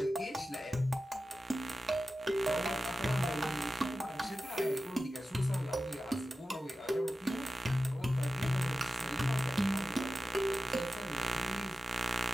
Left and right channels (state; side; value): normal; both; correlation 0.93